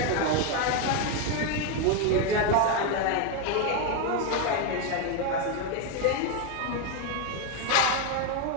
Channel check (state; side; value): different; both; correlation 0.02